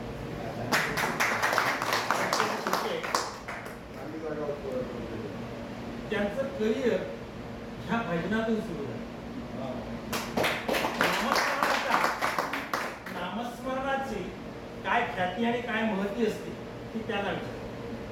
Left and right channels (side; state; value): both; identical; correlation 1.00